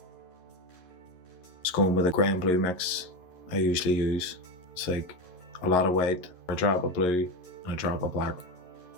Just going with a grey and blue mix I usually use. It's like a lot of white, a drop of blue and a drop of black.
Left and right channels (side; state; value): right; late; 11 ms